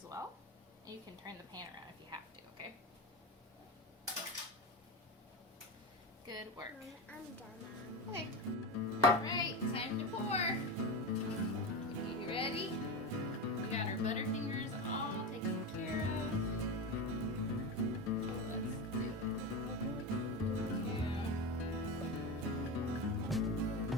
well. And you can turn the pan around if you have to, okay? Good work. I'm done, Mom. Okay. Alright, time to pour. You ready? We got our Butterfingers all taken care of. Let's do it. Yeah.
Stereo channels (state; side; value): normal; both; correlation 0.20